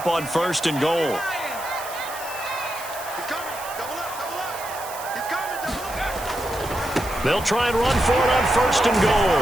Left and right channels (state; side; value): noise; right; hiss, 13 dB below the sound